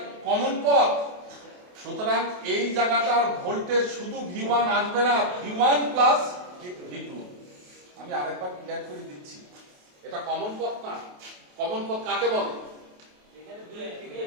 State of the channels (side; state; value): left; late; 28 ms